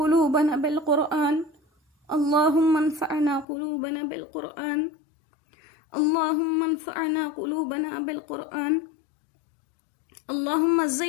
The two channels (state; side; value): drops out; right; at 3.5 s